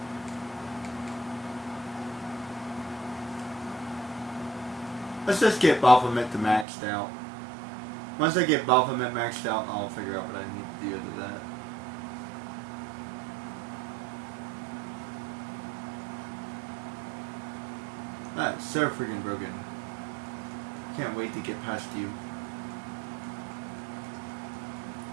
Let's just get Baphomet to maxed out. Once I get Baphomet maxed out, I'll figure out what I need to do with that. That's so freaking broken. Can't wait to get past you.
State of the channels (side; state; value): left; drops out; at 6.7 s